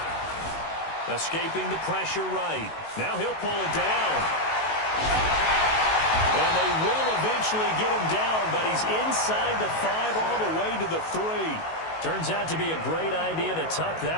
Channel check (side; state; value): right; late; 19 ms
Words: Escaping the pressure right. Now he'll pull it down. And they will eventually get him down, but he's inside the 5 all the way to the 3. Turns out to be a great idea to tuck